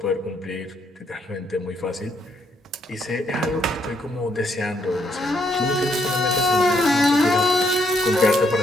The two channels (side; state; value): both; normal; correlation 0.72